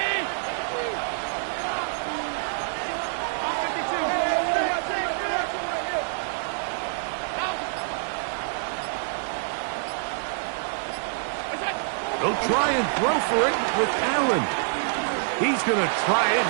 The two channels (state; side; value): silent; left; digital silence